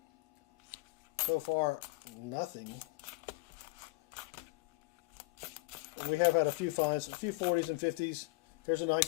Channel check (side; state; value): right; quieter; 24.6 dB